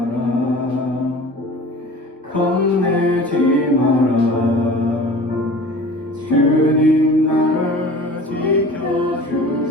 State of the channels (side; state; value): both; normal; correlation 0.42